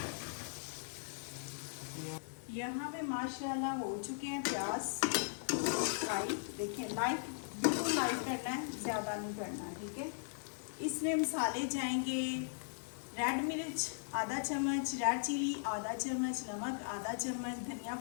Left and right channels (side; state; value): right; silent; digital silence